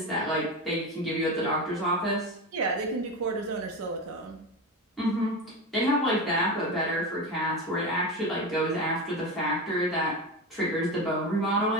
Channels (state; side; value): normal; both; correlation 0.21